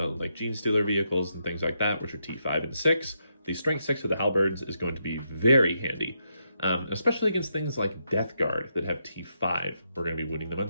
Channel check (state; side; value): inverted; both; correlation -0.81